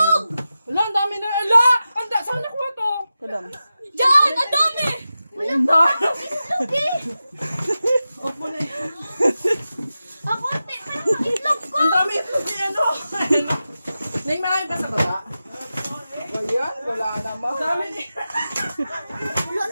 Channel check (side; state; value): both; inverted; correlation -0.93